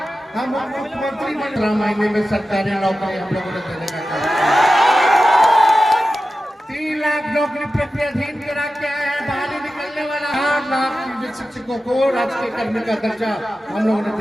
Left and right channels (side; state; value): both; normal; correlation 0.93